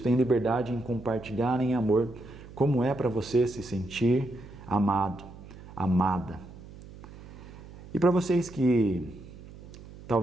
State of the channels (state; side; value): noise; right; hum, 17 dB below the sound